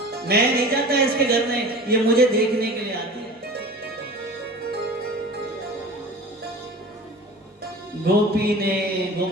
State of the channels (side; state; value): both; normal; correlation 0.38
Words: मैं नहीं जाता इसके घर में, ये मुझे देखने के लिए आती है।